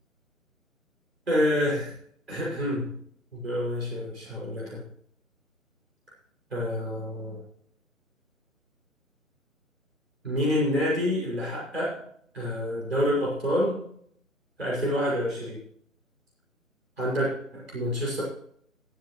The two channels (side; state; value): both; normal; correlation 0.48